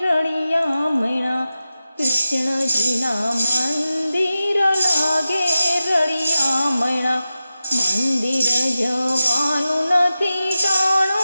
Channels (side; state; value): both; inverted; correlation -0.92